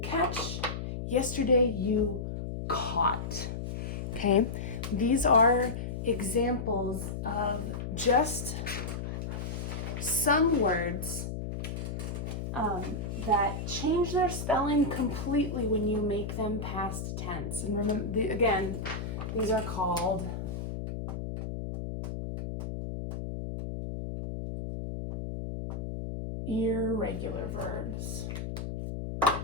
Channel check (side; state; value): left; noise; hum, 5 dB below the sound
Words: catch, yesterday you caught. Okay, these are examples of just some words that change their spelling completely when you make them past tense. And remember, again, these are called irregular verbs.